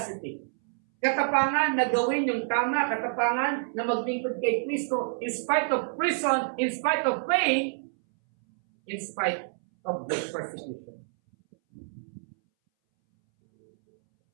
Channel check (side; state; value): left; silent; 59 dB below the other